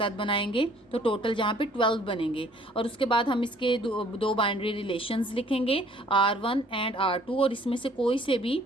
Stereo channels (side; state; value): both; normal; correlation 0.58